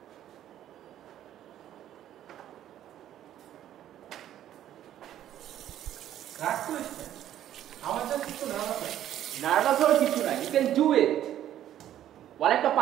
নার্ভাস হওয়ার কিছু নাই, ইউ ক্যান ডু ইট। ওয়ালে একটা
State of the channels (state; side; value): quieter; left; 11.6 dB